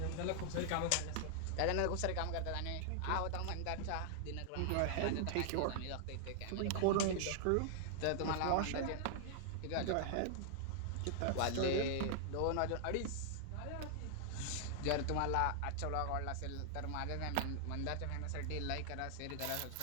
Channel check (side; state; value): both; different; correlation 0.00